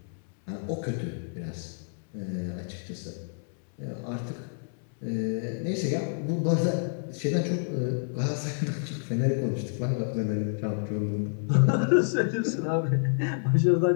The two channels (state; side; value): silent; right; 59 dB below the other